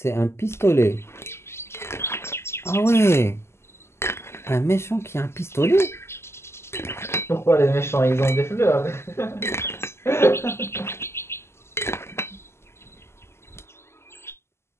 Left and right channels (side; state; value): right; late; 0.12 ms